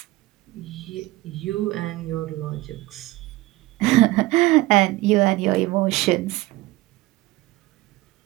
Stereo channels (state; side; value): quieter; left; 19.1 dB